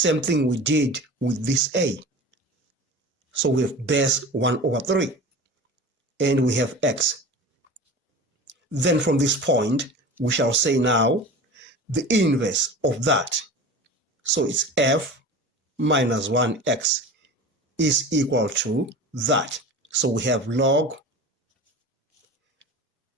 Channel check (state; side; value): normal; both; correlation 0.34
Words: thing we did with this a. So we have base 1 over 3. And we have x. Then from this point, we shall say now the inverse of that. So it's f minus 1x is equal to that. So we have log